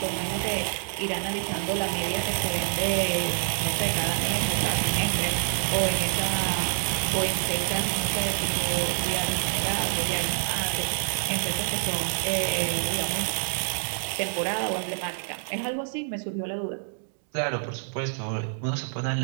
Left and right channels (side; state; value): left; silent; digital silence